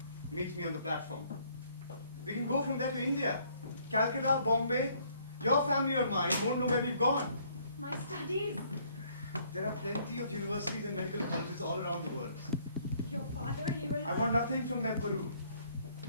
Meet me on the platform. We can go from there to India. Calcutta, Bombay. Your family or mine won't know where we've gone. My studies. There are plenty of universities and medical colleges all around the world. Your father, he will... I want nothing from them, Peru.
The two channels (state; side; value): inverted; both; correlation -0.64